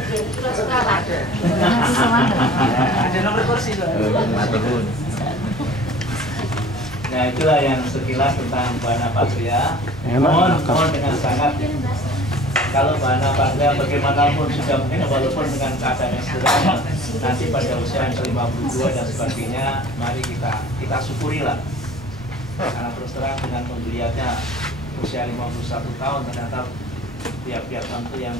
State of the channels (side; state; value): both; normal; correlation 0.46